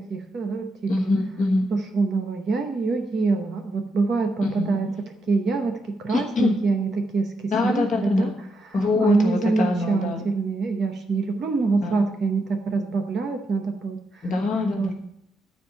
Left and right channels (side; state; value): both; normal; correlation 0.82